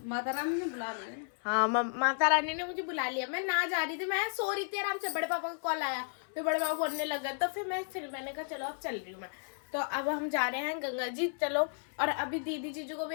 माता रानी ने बुला लिया। हाँ, माता रानी ने मुझे बुला लिया। मैं ना जा रही थी, मैं सो रही थी आराम से, बड़े पापा का कॉल आया, फिर बड़े पापा बोलने लगा, तो फिर मैंने कहा चलो अब चल रही हूँ मैं। तो अब हम जा रहे हैं गंगा जी, चलो। और अभी दीदी जीजू को भी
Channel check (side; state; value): right; silent; 56 dB below the other